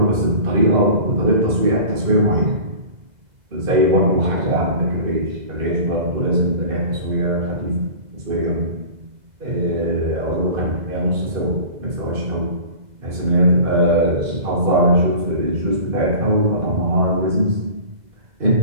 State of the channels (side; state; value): left; late; 2.0 ms